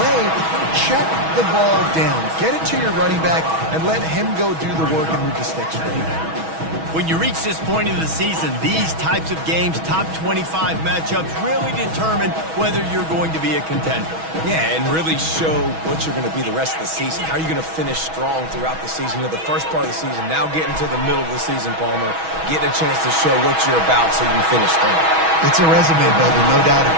check the ball down. Get it to your running back and let him go do the work and move the sticks for you. When you reach this point of the season, these types of games, top 25 matchups, really determine whether you're going to be a contender. Yeah, and really show what you're going to be the rest of the season. How are you going to finish strong throughout the season? You know, the first part of the season, now getting to the middle of the season, Palmer, getting a chance to show what you're about so you can finish strong. It's a resume builder, no doubt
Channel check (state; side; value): late; left; 6.2 ms